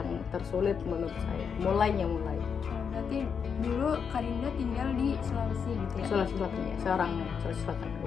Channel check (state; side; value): quieter; right; 6.6 dB